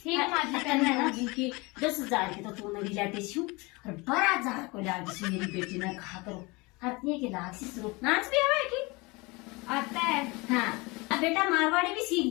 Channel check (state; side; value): quieter; right; 25.3 dB